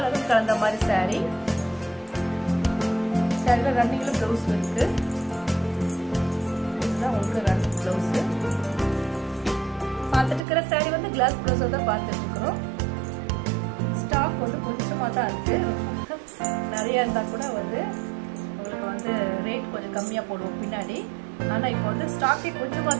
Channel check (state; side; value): drops out; left; at 10.4 s